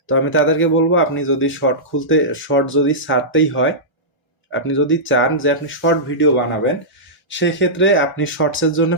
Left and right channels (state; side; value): normal; both; correlation -0.15